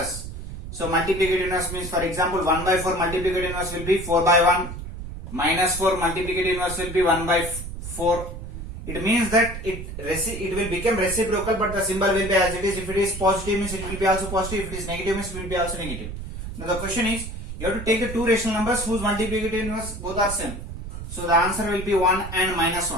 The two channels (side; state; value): right; noise; rumble, 8 dB below the sound